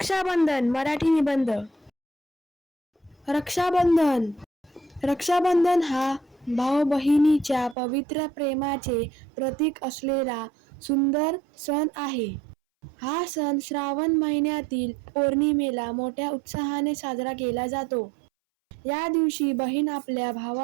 मराठी निबंध. रक्षाबंधन. रक्षाबंधन हा भाऊ बहिणीच्या पवित्र प्रेमाचे प्रतीक असलेला सुंदर सण आहे. हा सण श्रावण महिन्यातील पौर्णिमेला मोठ्या उत्साहाने साजरा केला जातो. या दिवशी बहीण आपल्या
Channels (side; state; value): left; drops out; at 7.8 s